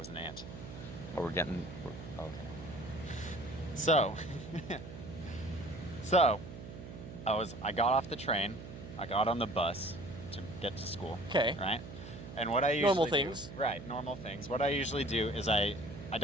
an ant. But okay. So, I got off the train. I got on the bus to get to school. Okay. Right? And what I usually Normal things. Right, normal things. What I usually do is I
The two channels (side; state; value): right; noise; hum, 12 dB below the sound